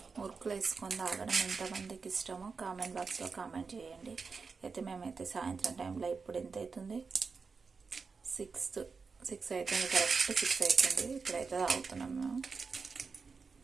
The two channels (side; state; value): left; quieter; 4.9 dB